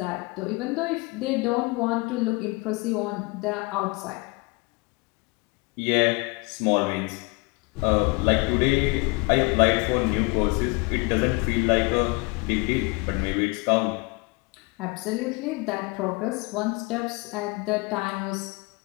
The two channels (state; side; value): quieter; right; 27.3 dB